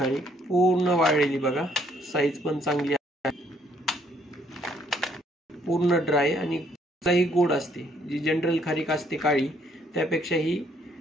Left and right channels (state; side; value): normal; both; correlation 0.67